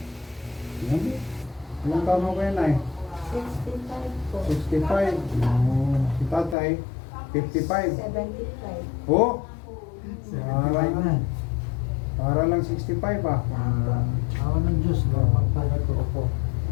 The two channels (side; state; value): right; drops out; at 6.6 s